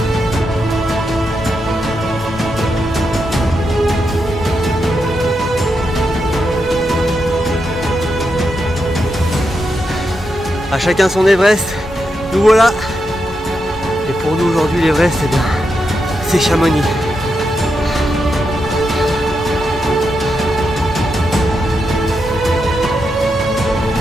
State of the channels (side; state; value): both; normal; correlation 0.85